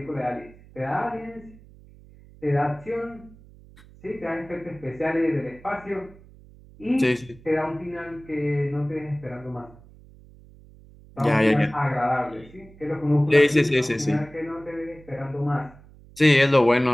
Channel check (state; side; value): noise; right; hum, 23 dB below the sound